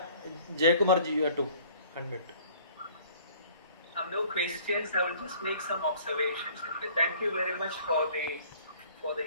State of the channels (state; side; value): inverted; both; correlation -0.53